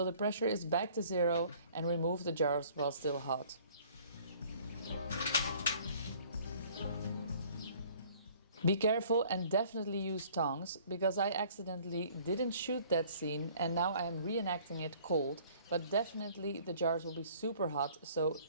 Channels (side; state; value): both; inverted; correlation -0.54